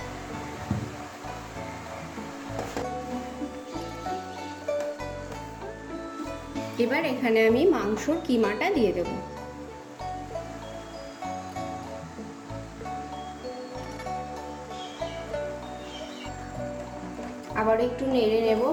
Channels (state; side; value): identical; both; correlation 1.00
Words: এবার এখানে আমি মাংসর কিমাটা দিয়ে দেব। আবার একটু নেড়ে নেব